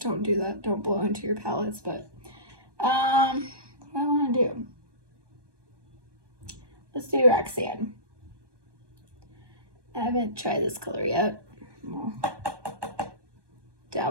do that. Don't blow into your palettes, but what do I want to do? Let's do Roxanne. I haven't tried this color yet. We'll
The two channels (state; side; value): late; left; 1.2 ms